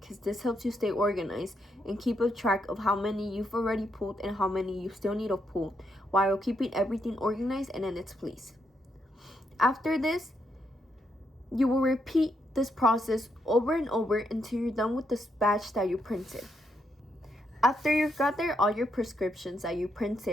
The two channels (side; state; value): both; normal; correlation 0.79